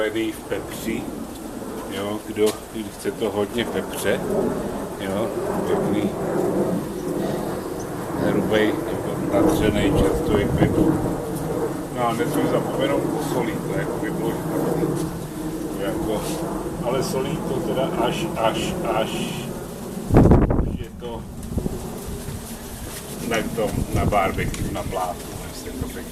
v pepři. Jo, kdo chce to hodně pepře, jo, pěkný, hrubej, natřenej čerstvý pepř. No a nesmím zapomenout posolit, to jako by bylo špatný. Jako, ale solí to teda až je to na barbecue, na plátu, než se to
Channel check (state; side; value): identical; both; correlation 1.00